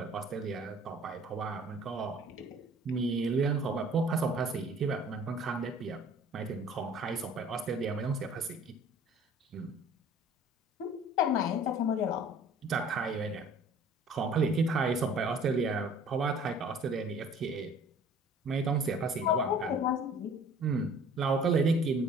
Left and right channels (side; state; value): both; normal; correlation 0.50